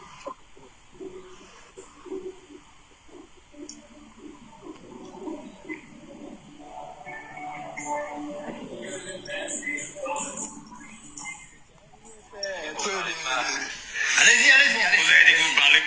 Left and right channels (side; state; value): both; identical; correlation 1.00